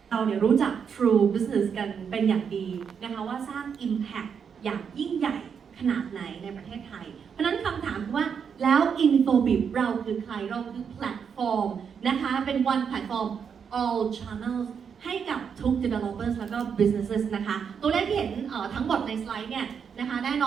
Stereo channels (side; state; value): left; quieter; 6.9 dB